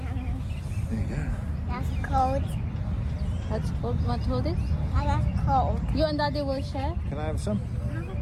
you go. That's cold. That's cold. Want to hold it? That's cold. You and Daddy will share. Can I have some?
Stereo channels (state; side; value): identical; both; correlation 1.00